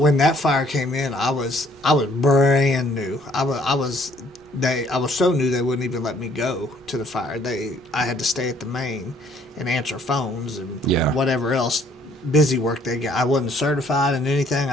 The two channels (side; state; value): both; normal; correlation 0.62